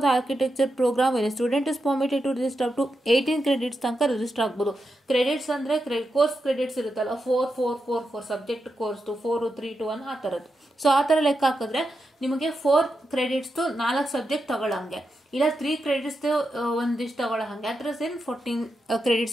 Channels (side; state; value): both; normal; correlation 0.87